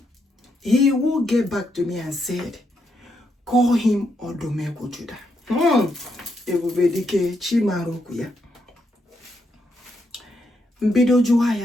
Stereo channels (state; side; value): normal; both; correlation 0.79